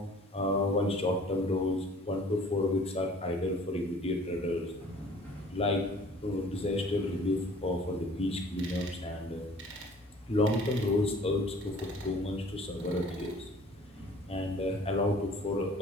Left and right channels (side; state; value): both; normal; correlation 0.51